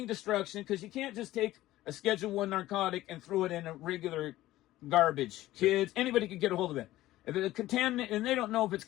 destruction, because you can't just take a Schedule I narcotic and throw it in a regular garbage. Kids, anybody could get a hold of it. If it's contaminated, and they don't know if it's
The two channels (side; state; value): right; quieter; 15.7 dB